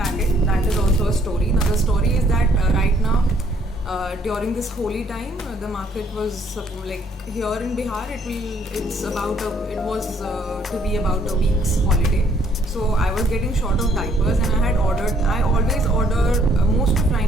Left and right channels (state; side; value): normal; both; correlation 0.65